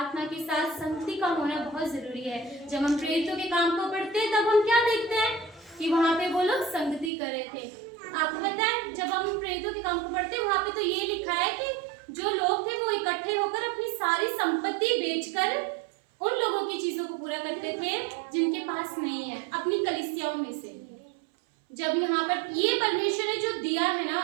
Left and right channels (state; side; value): drops out; left; at 7.1 s